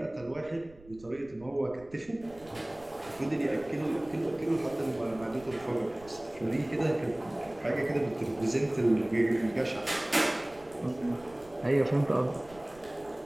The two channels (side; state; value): right; noise; rumble, 23 dB below the sound